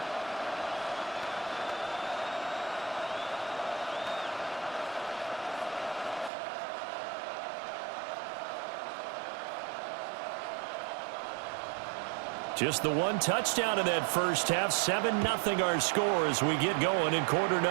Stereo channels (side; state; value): left; drops out; at 6.3 s